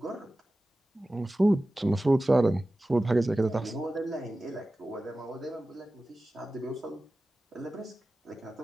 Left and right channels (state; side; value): normal; both; correlation 0.96